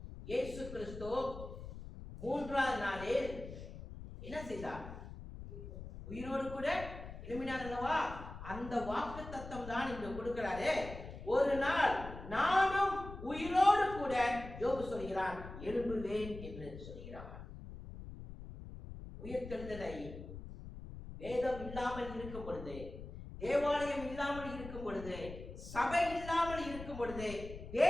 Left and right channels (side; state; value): left; noise; rumble, 11 dB below the sound